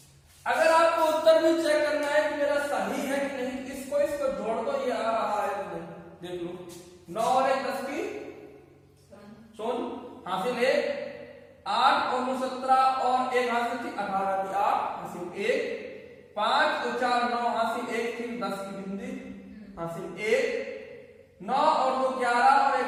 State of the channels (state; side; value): identical; both; correlation 1.00